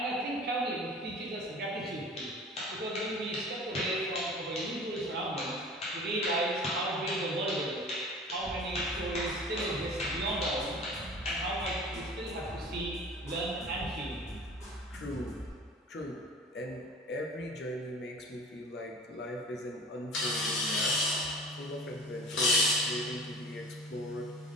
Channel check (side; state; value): both; normal; correlation 0.41